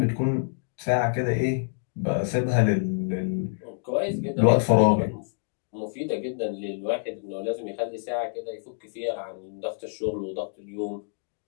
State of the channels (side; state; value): right; silent; digital silence